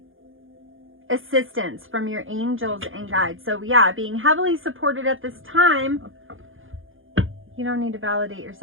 assistance from your angels and guides. So yeah, being heavily supported at this time. You don't need to validate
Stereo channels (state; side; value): late; left; 0.58 ms